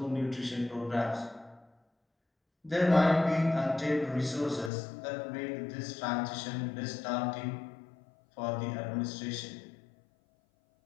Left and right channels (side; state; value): right; drops out; at 4.7 s